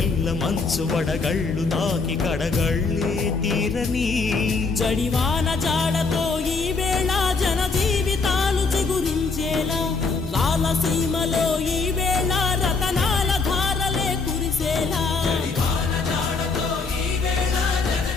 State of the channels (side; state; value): right; quieter; 4.3 dB